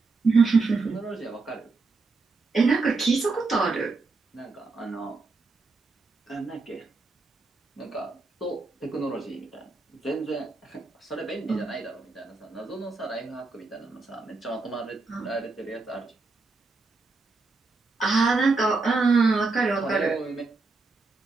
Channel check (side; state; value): left; quieter; 3.8 dB